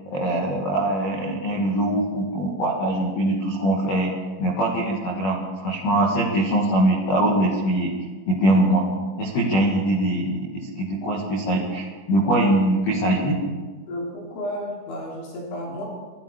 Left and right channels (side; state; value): right; late; 21 ms